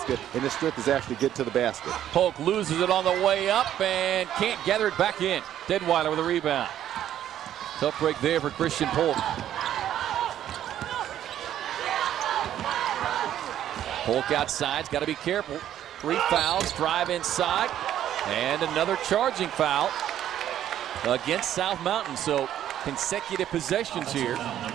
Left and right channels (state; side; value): quieter; left; 11.2 dB